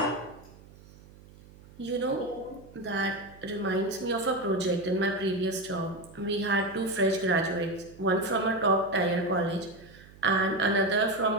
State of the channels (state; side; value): noise; right; hum, 22 dB below the sound